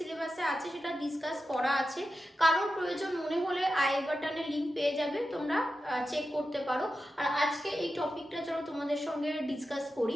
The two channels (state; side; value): normal; both; correlation 0.91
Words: আছে সেটা ডিসকাস করা আছে। কারোর প্রয়োজন মনে হলে আই বাটনে লিঙ্ক পেয়ে যাবে, তোমরা চেক করতে পারো। আর আজকে এই টপিকটা চলো তোমাদের সঙ্গে ডিসকাস করি।